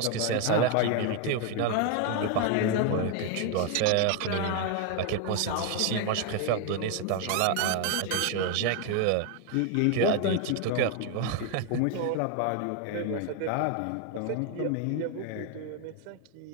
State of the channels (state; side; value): different; both; correlation 0.01